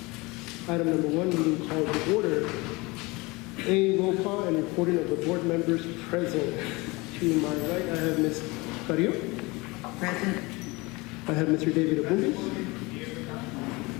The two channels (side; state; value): right; quieter; 24.4 dB